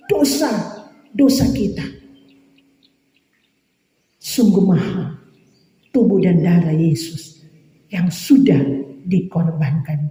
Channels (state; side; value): identical; both; correlation 1.00